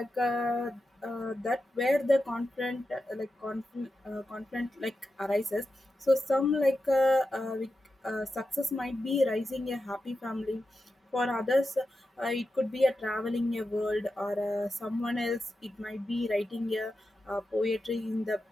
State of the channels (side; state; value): both; normal; correlation 0.90